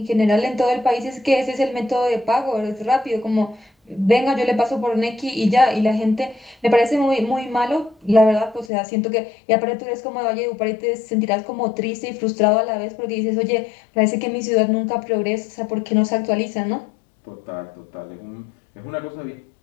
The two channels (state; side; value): drops out; right; at 8.7 s